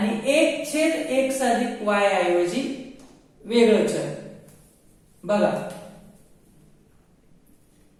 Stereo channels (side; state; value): both; identical; correlation 1.00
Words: 1/x + y ऐवजी वेगळं चल. बघा